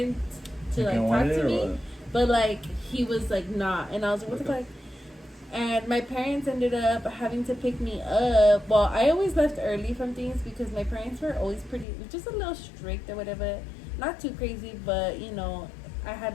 to like talk to me, but like he was like not. And I was like, what the fuck? And my parents ended up having to pick me up. Well, I always left early from things because my parents were always pretty, just a little strict or whatever. Not too crazy, but you know, I had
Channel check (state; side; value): drops out; right; at 11.9 s